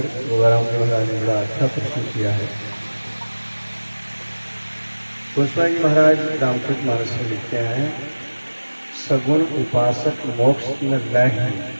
गोगाराम जी महाराज ने बड़ा अच्छा प्रश्न किया है। गोस्वामी जी महाराज रामचरितमानस में लिखते हैं, सगुण उपासक मोक्ष न लय,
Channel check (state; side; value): inverted; both; correlation -1.00